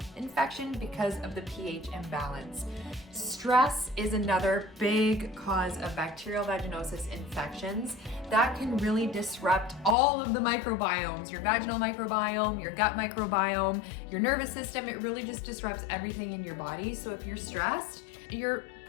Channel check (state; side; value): drops out; right; at 10.0 s